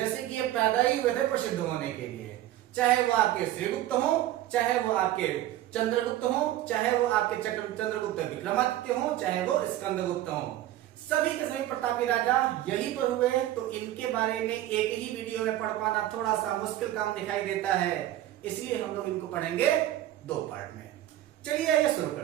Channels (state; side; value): quieter; left; 13.8 dB